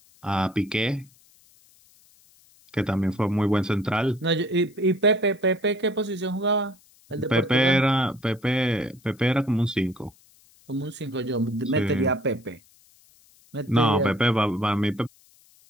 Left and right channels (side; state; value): left; noise; hiss, 30 dB below the sound